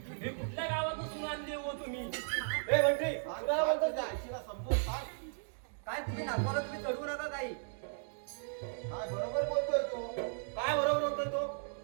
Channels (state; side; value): silent; left; digital silence